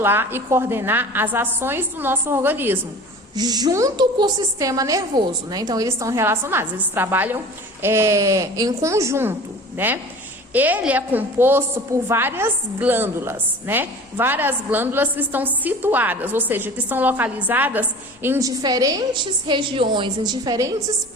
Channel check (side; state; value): both; normal; correlation 0.40